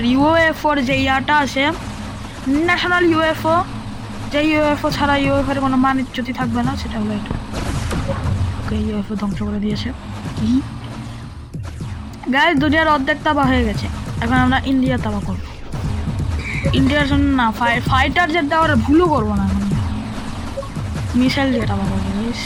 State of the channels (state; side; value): identical; both; correlation 1.00